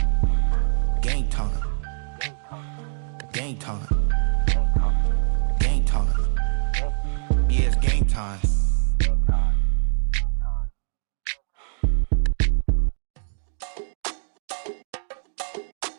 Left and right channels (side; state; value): left; silent; digital silence